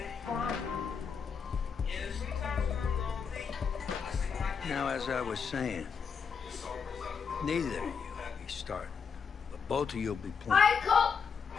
Now, as I was saying, neither of you will be starting, but both of you will be playing.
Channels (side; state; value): right; quieter; 6.1 dB